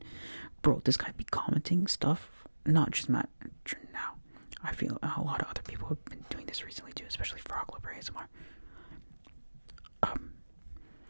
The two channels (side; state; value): both; inverted; correlation -1.00